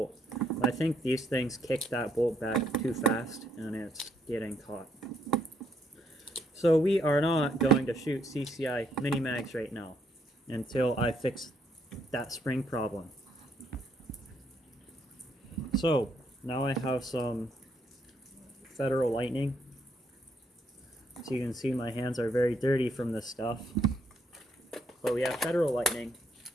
I think these things kick that bolt back too fast, and it's getting caught. So we are not going to shoot CCI mini mags right now until I fix that spring problem. So now I have some Federal Lightning. So you can see my hands are very dirty from this stuff. But we have Federal Lightning.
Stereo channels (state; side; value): normal; both; correlation 0.72